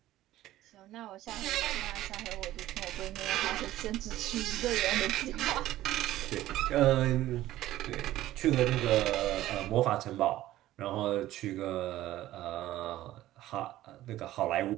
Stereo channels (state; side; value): quieter; left; 14.8 dB